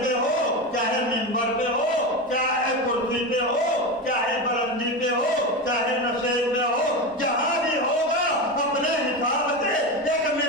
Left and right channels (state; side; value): normal; both; correlation 0.19